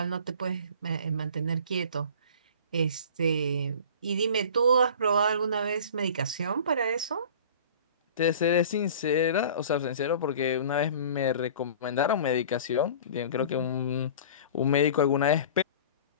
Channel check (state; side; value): inverted; both; correlation -0.42